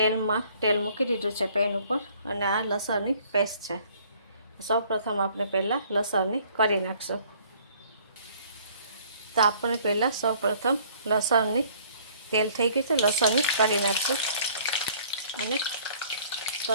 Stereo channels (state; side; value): inverted; both; correlation -0.57